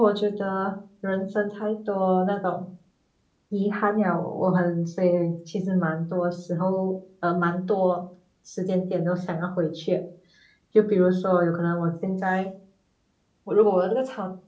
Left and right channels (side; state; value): both; identical; correlation 1.00